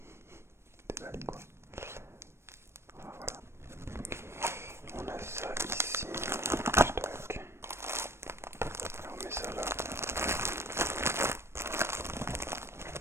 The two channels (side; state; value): left; late; 0.12 ms